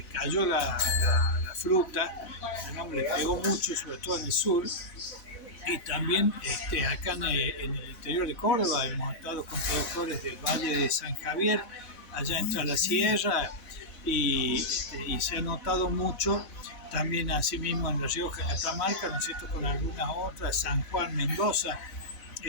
cayó la fruta, digamos, le pegó mucho, sobre todo en el sur, y también acá en el interior de Córdoba hemos estado con productores del Valle de San Javier, allá entre la sierra, y se ha notado mucho también asimismo en La Rioja, Catamarca, ¿no es cierto?, con algunas otras, San Juan, Mendoza,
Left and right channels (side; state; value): right; late; 4.0 ms